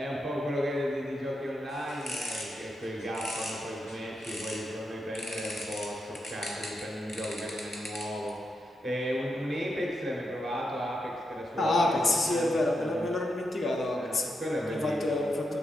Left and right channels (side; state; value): both; normal; correlation 0.85